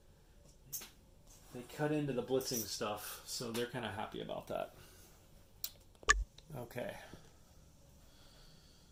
they cut into the blitzing stuff, so they're kind of happy about that. Okay.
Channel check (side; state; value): both; identical; correlation 1.00